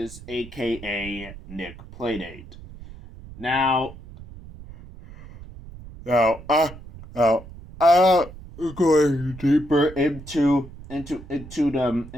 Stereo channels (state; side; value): noise; right; rumble, 16 dB below the sound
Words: AKA Nick Playdate. Now, now, going deeper into